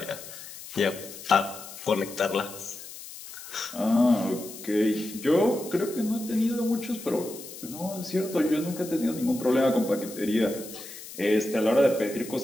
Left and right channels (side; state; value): left; noise; hiss, 14 dB below the sound